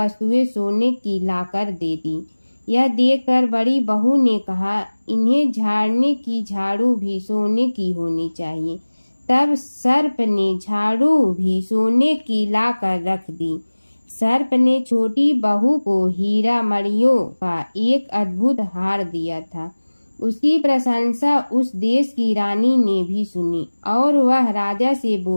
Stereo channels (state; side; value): inverted; both; correlation -1.00